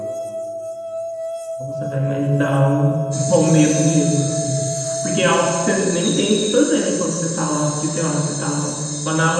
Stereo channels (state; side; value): identical; both; correlation 1.00